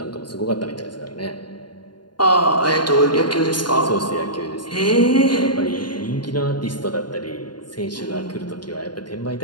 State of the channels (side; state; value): right; late; 0.71 ms